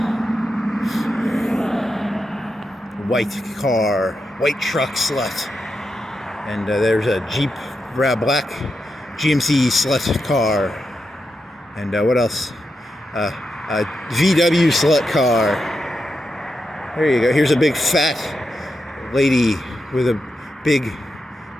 White car, white truck slut. And there's a Jeep, black GMC slut car. And what else? A VW slut car. There you go. Here's a big fat lady with a big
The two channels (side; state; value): both; normal; correlation 0.86